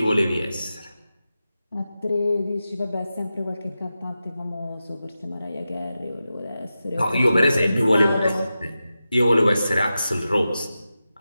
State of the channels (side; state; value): both; inverted; correlation -0.92